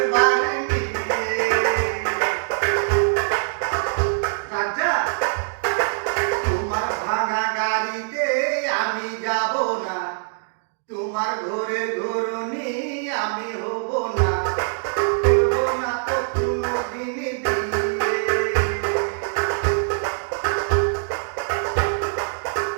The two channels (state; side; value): silent; left; digital silence